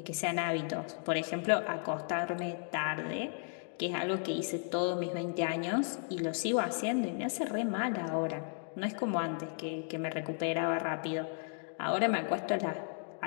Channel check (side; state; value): right; silent; 55 dB below the other